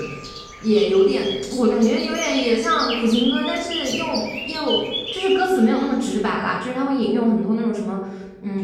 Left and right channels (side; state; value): both; identical; correlation 1.00